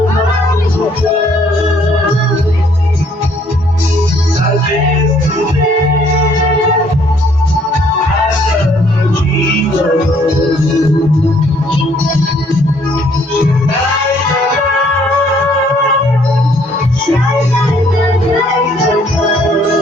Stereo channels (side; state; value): both; normal; correlation 0.64